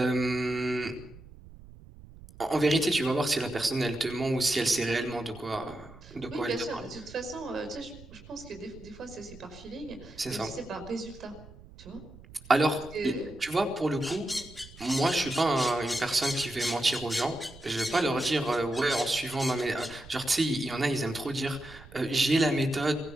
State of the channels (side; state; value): right; noise; rumble, 19 dB below the sound